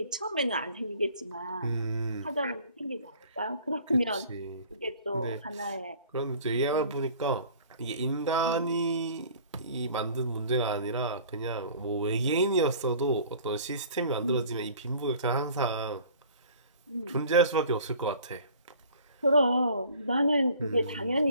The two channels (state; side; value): inverted; both; correlation -0.49